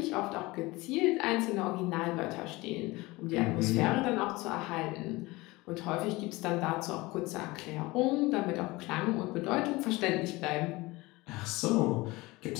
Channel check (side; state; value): right; quieter; 21.6 dB